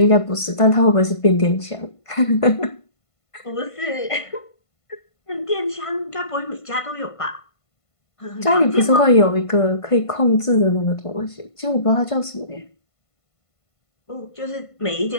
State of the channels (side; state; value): right; late; 1.5 ms